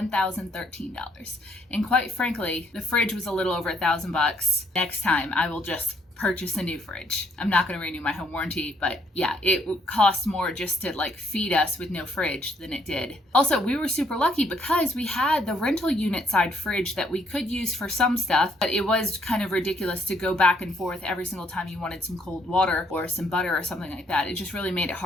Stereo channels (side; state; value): both; normal; correlation 0.69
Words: And quite frankly, the fridge was a little over $1,000. Next time I will just purchase a new fridge. I'm not going to renew my home warranty, but yeah, it would cost more just to like feed us with no fridge than it did. Also, we were super lucky because we had the rental unit side fridge that we could use for some stuff, but it was kind of ridiculous to go back and forth every single time you wanted some cold water or some butter or something like that. It just really made it